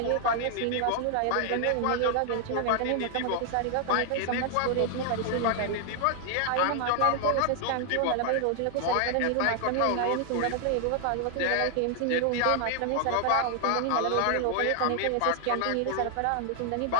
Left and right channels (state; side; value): different; both; correlation 0.00